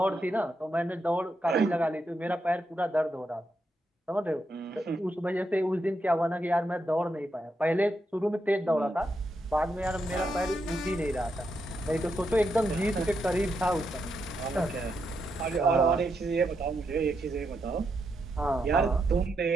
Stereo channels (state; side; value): normal; both; correlation 0.82